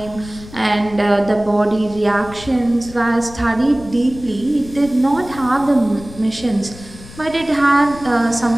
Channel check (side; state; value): left; noise; rumble, 17 dB below the sound